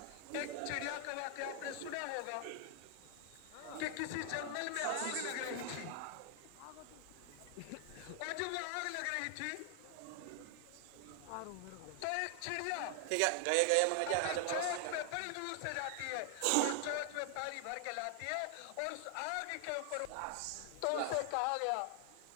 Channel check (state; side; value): different; both; correlation 0.00